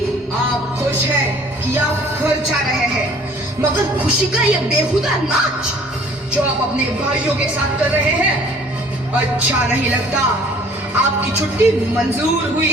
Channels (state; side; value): normal; both; correlation 0.53